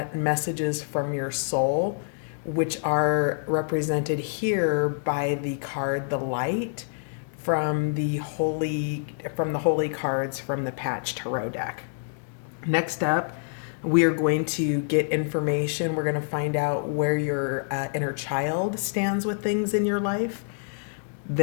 messages from your soul, which are represented here by the card the light from the holy cards from the Patch Tarot deck. Next up, we are going to get information. We're going to find out where your inner child stands with things in your life.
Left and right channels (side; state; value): right; silent; digital silence